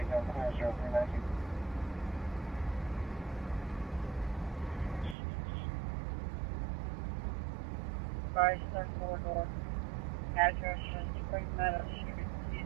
Sorry, third corridor. Address is Spring Meadow Street,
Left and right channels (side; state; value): left; drops out; at 5.2 s